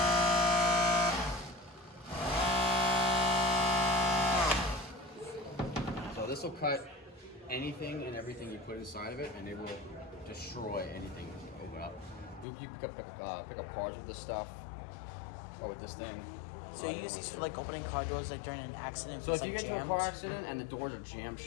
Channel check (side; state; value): right; drops out; at 12.5 s